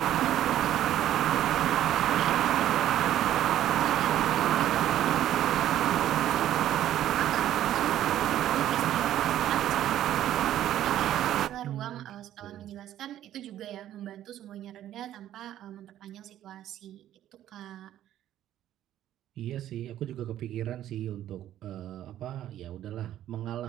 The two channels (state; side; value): quieter; left; 12.2 dB